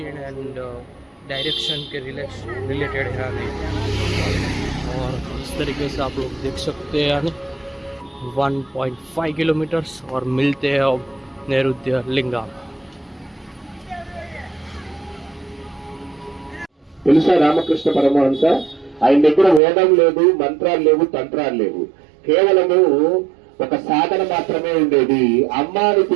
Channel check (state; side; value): drops out; left; at 19.6 s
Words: एंड डायरेक्शन के रिलेटेड है यानी। और इस तरीके से आप लोग देख सकते हैं यानी 1.5 किलोमीटर्स और मिलते हैं अब नैऋत्य लिंगा। తెలుసా రామకృష్ణ పరమహంస ఆయన దగ్గర వేదం లేదు, మంత్రాలు లేవు, తంత్రాలు లేవు, కేవలము ఒక సాధన మాత్రమే ఉండేది. అమ్మాని